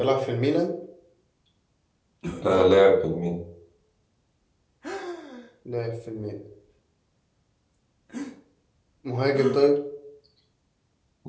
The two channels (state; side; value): identical; both; correlation 1.00